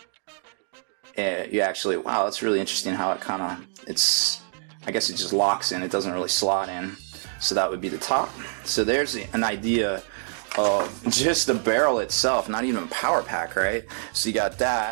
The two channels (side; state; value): left; silent; digital silence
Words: And you actually, wow, that's really interesting how it kind of, I guess it just locks in. It doesn't really slot in. So that would be the top. So there's an idea of just the barrel itself, not even power pack, right? So you got